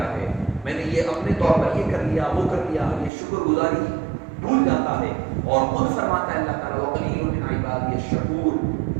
ہے, میں نے یہ اپنے طور پر یہ کر لیا وہ کر لیا, یہ شکر گزاری بھول جاتا ہے. اور خود فرماتا ہے اللہ تعالیٰ وَقَلِيلٌ مِّنْ عِبَادِيَ الشَّكُورُ,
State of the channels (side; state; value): left; drops out; at 3.1 s